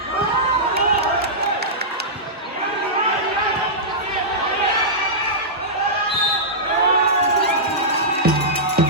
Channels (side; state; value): both; normal; correlation -0.14